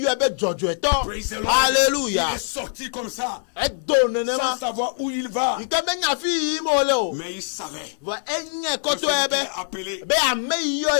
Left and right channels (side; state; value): right; silent; 63 dB below the other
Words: be dzɔdzɔetɔ Praise the Lord. Alléluia. Il est sorti comme ça, edo sans nenema savoir où il va. yi ke menya fi yiyim wole o Mais il savait vɔ enye que celui kɔtɔe qu'il be a appelé, be ame yi yɔ à